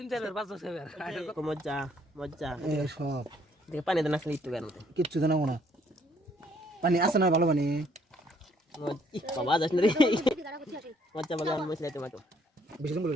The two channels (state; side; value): normal; both; correlation 0.65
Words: চার পাঁচ বছর aku moja এ সব দেখে পানি দানা আসলে একটু কেন কিচ্ছু জানাবো না পানি আছে না ভালো পানি ih bawa aja sendiri moja bagian mau sila tomato বেশি দিন